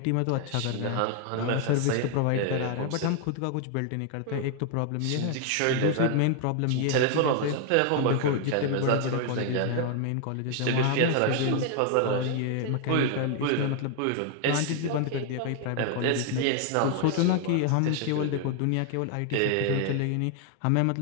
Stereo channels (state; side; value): different; both; correlation 0.00